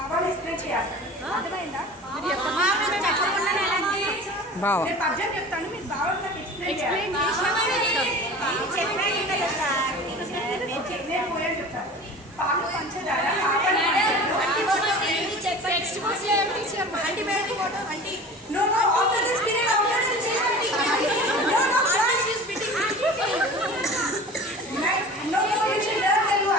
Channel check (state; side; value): normal; both; correlation 0.38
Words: ఎక్స్ప్లెయిన్ చేయాలి. అర్థమైందా? నేను పద్యం చెప్తాను, మీరు బాబాలు నాకు ఎక్స్ప్లెయిన్ చేయాలి. నేను పోయాను చెప్తాను. పాలు పంచదార